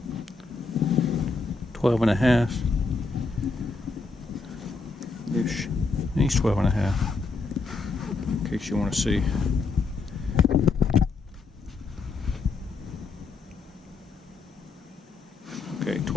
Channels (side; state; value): right; quieter; 4.1 dB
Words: Twelve and a half ish. He's 12 and a half, in case you want to see. Okay,